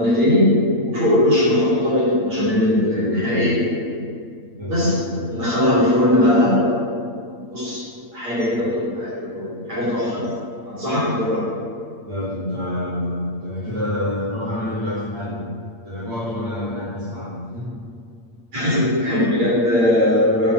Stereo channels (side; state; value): left; late; 8.7 ms